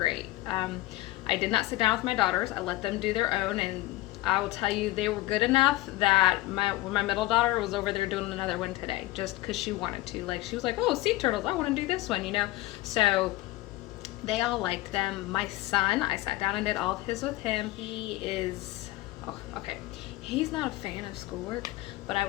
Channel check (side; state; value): right; quieter; 17.8 dB